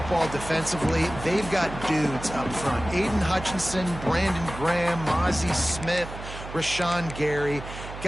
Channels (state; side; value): noise; right; hum, 11 dB below the sound